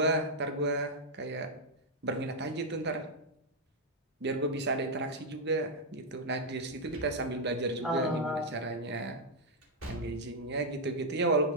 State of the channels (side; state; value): both; normal; correlation -0.04